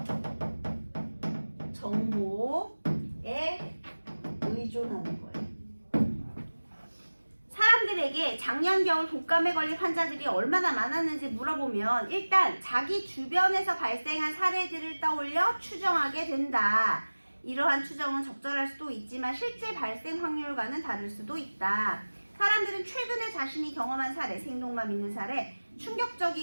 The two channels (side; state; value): both; inverted; correlation -1.00